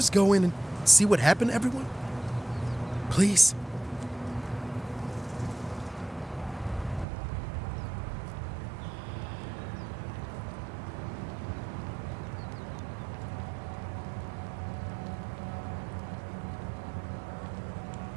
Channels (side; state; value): left; drops out; at 7.1 s